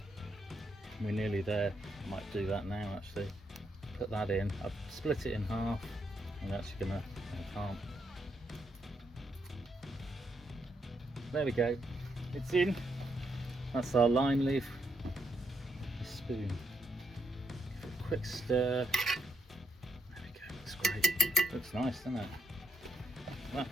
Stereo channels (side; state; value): both; normal; correlation 0.75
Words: We're nearly there. I might do that now actually. Put that in. I've split it in half. I'm actually gonna, I can't. There we go. It's in. That's our lime leaf. A spoon. Give it a quick stir. There we go. Looks great. Looks nice, doesn't it?